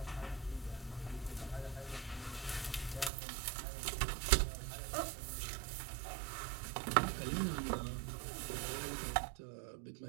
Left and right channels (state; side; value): drops out; left; at 3.1 s